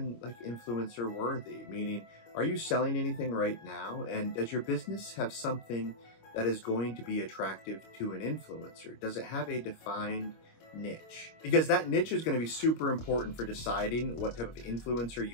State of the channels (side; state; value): right; late; 25 ms